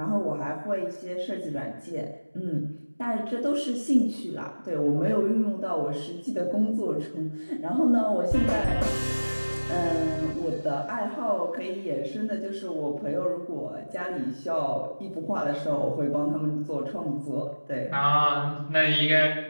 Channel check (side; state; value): both; inverted; correlation -1.00